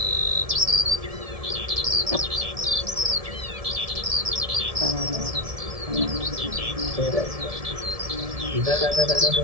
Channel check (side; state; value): left; late; 1.7 ms